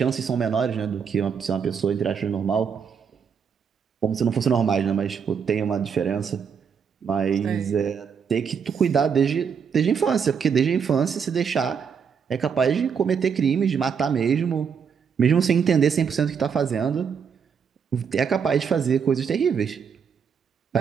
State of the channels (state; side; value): quieter; left; 6.7 dB